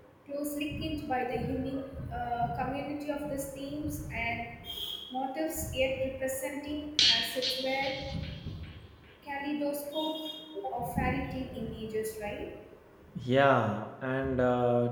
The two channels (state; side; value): identical; both; correlation 1.00